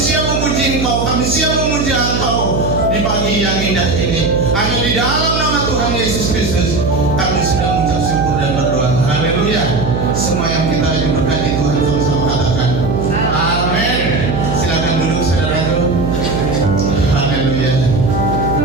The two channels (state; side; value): noise; right; hum, 3 dB below the sound